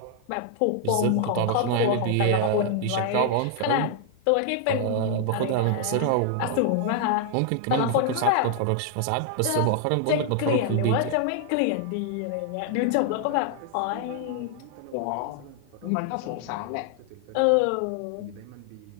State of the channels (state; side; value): different; both; correlation 0.00